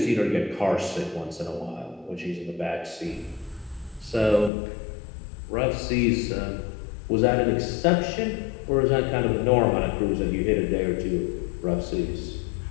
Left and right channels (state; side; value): drops out; right; at 4.5 s